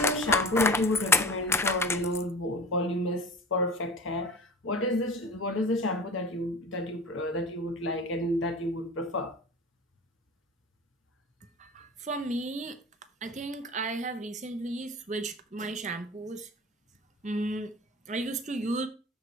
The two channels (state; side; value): normal; both; correlation 0.36